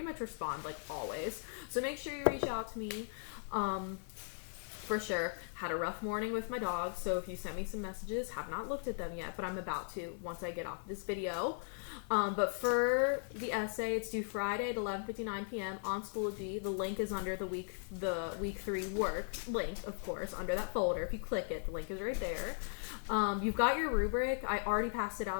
much respond, like, always. So make sure you reach out to me. For sure. Had a rough morning with my dog, so if you sent me some messages, have not looked at them yet, but I'm about to once I get off this video. But for the essay, it's due Friday at 11:59 p.m. on Schoology. The link is under the week 3 work link, of course, under that folder. If you click it, the link is right there. You've got your rubric. I already passed it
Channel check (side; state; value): right; silent; 52 dB below the other